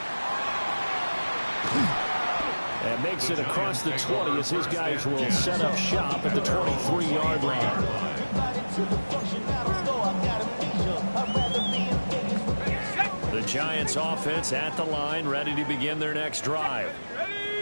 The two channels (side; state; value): both; inverted; correlation -1.00